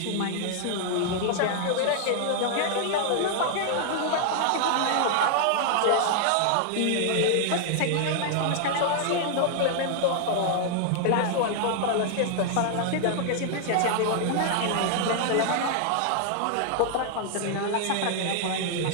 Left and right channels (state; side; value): different; both; correlation 0.00